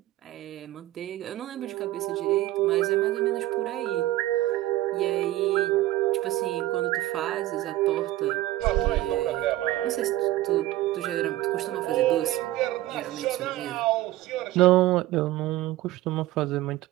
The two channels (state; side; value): quieter; left; 15.8 dB